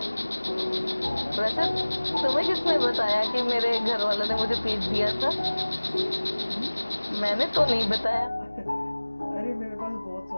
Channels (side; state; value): both; inverted; correlation -1.00